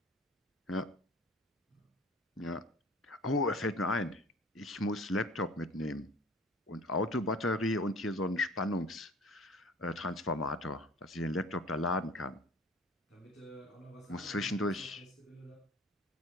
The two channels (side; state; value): both; normal; correlation 0.45